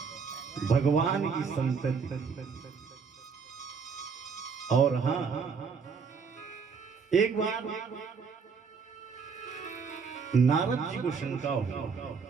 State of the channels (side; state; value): left; quieter; 5.6 dB